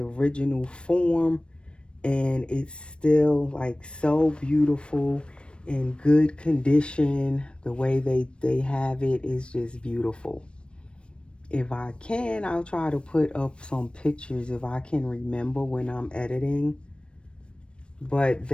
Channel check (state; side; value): late; right; 0.057 ms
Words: form, and it's still like so beautiful, in good condition. The way they have it is just beautiful. If I can, I'll try to put up some pictures if I can remember when I'm editing. But